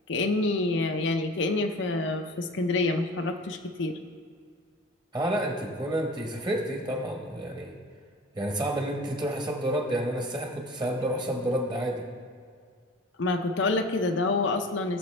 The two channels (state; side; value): normal; both; correlation 0.40